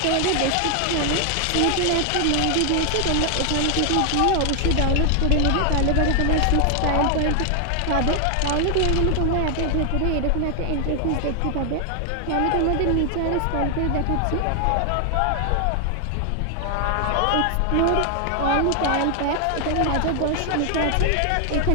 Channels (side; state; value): both; different; correlation 0.00